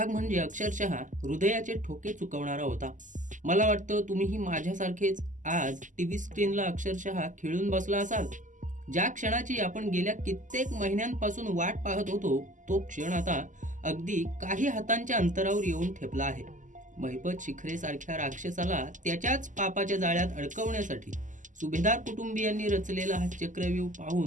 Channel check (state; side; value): late; left; 0.37 ms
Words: म्हणजे अक्षरशः हृदयाचे ठोके चुकवणारा होता. मला वाटतं तुम्हीही माझ्यासारखेच आज टीव्ही स्क्रीनला अक्षरशः खिळून बसला असाल. ज्या क्षणाची आपण गेल्या कित्येक महिन्यांपासून वाट पाहत होतो, तो क्षण आता अगदी काही हातांच्या अंतरावर येऊन ठेपला आहे. महिपत शिखरे सारख्या राक्षसाला त्याच्याच पापाच्या जाळ्यात अडकवण्यासाठी सुभेदार कुटुंबियांनी रचलेला हा चक्रव्यूह